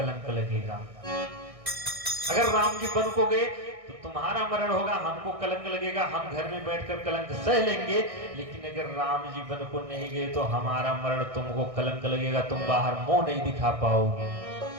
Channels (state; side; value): late; left; 1.6 ms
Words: लगेगा। अगर राम जी वन को गए तो तुम्हारा मरण होगा, हमको कलंक लगेगा, हम घर में बैठकर कलंक सह लेंगे। लेकिन अगर राम जी वन को नहीं गए तो हमारा मरण तुमको कलंक लगेगा, तुम बाहर मुंह नहीं दिखा पाओगे।